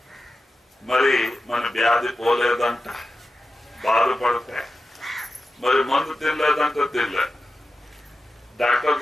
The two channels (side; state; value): both; normal; correlation 0.92